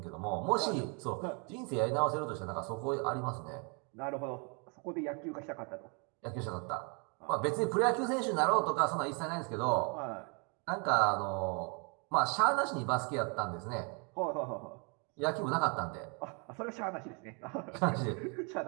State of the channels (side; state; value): left; quieter; 35.3 dB